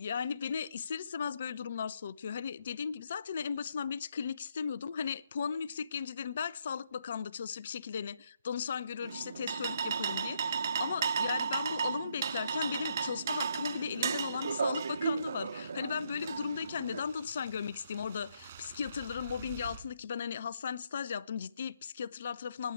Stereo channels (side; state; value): both; inverted; correlation -0.74